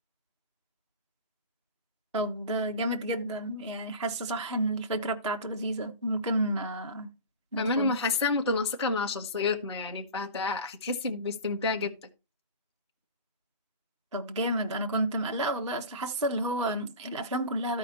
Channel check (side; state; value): both; inverted; correlation -0.33